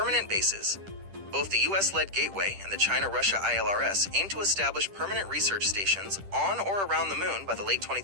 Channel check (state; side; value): late; left; 10 ms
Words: bases. Both the US-led Gateway and the China-Russia ILRS aim to establish permanent research stations on or around the moon by the late